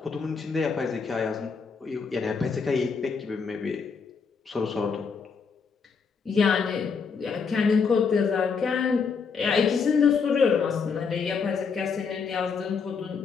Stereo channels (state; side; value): quieter; right; 5.6 dB